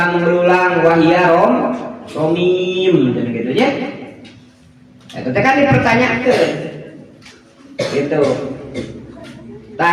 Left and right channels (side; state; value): both; identical; correlation 1.00